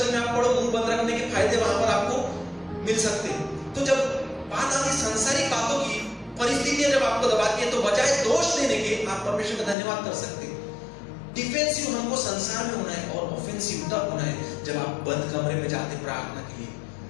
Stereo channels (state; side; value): drops out; right; at 9.8 s